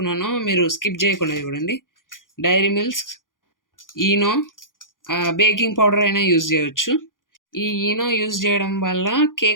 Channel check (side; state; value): right; late; 0.89 ms